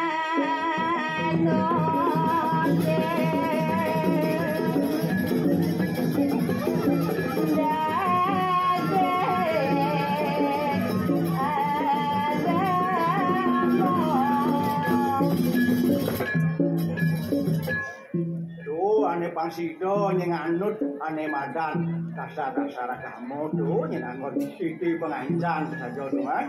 Ane pangsido nyeng anut ane madan dasar-dasar kamu tuh nyeng anut siti pengancan saja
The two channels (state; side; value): identical; both; correlation 1.00